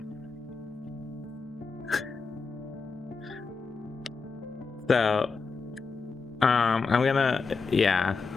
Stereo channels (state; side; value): quieter; right; 4.7 dB